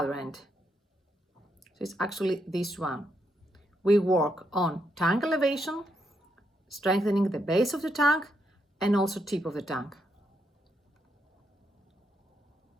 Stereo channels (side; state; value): both; normal; correlation 0.79